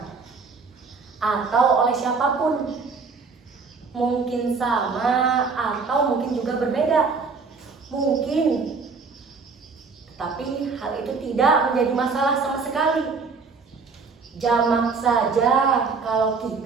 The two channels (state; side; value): quieter; left; 4.7 dB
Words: atau oleh siapapun. Mungkin sama atau mungkin juga berbeda. Mungkin, tapi hal itu tidak menjadi masalah sama sekali. Jamak saja kalau